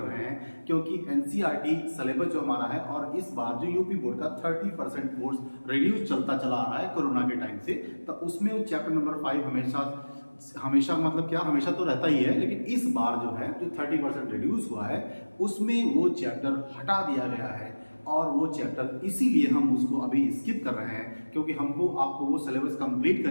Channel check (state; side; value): inverted; both; correlation -1.00